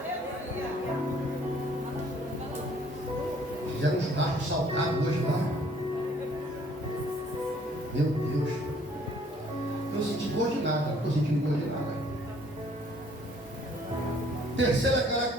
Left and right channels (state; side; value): normal; both; correlation 0.60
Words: Fizeram uns carros salgados hoje lá. Meu Deus. estou sentindo gosto de nada. Não estou sentindo gosto de nada. Terceira